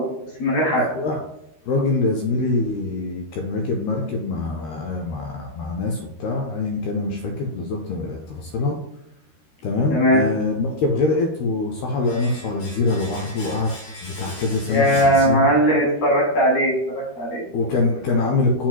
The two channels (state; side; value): late; right; 13 ms